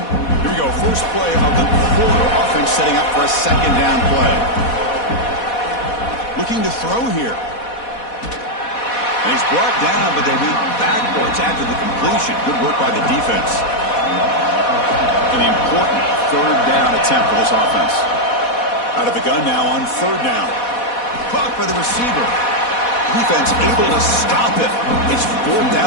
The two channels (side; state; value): right; late; 4.1 ms